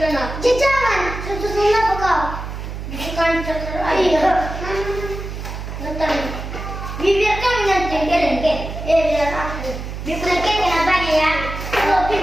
nak. Jangan. Susun apa kau? Bukan terus. Iya. Betul. Biarkan nanti kelengke. Biar aku. Biarkan kenapa ya? Kalau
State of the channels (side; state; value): right; noise; hum, 8 dB below the sound